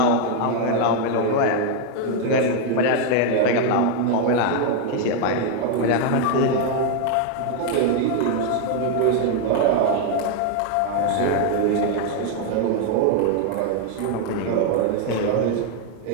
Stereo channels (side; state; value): both; different; correlation 0.01